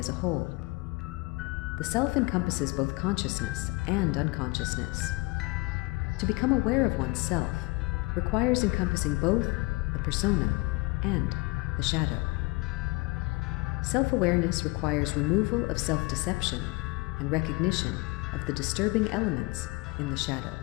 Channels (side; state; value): right; quieter; 25.2 dB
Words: a whole. The self encompasses both consciousness and unconsciousness. To become aware of one's self requires encompassing both the persona and the shadow. Self-awareness requires removal of self-deception and recognition of the disturbing elements in the shadow.